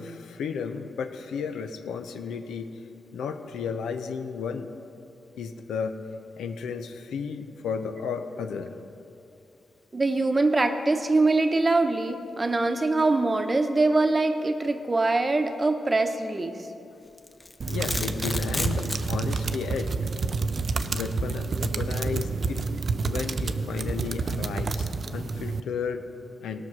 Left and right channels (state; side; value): normal; both; correlation 0.88